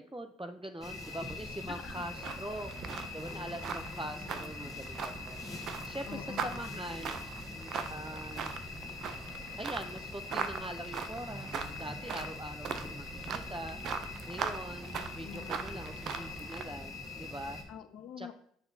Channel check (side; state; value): both; normal; correlation 0.58